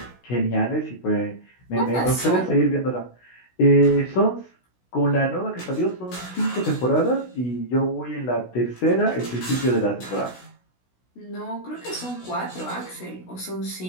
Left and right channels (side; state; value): right; late; 16 ms